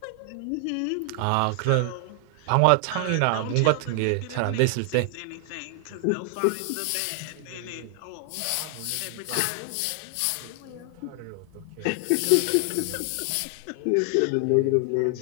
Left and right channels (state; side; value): different; both; correlation 0.00